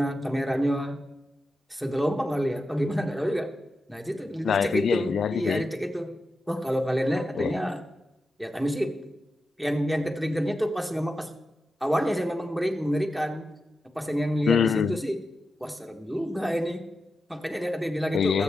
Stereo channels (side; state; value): both; normal; correlation 0.90